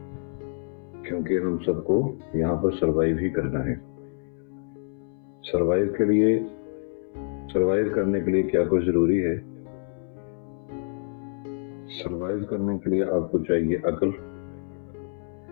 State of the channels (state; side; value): silent; right; 60 dB below the other